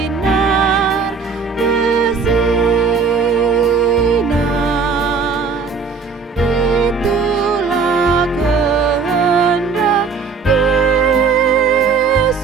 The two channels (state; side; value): quieter; left; 5.2 dB